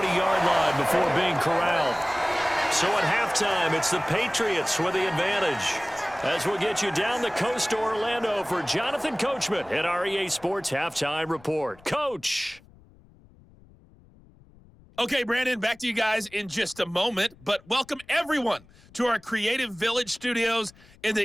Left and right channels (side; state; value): left; noise; rumble, 26 dB below the sound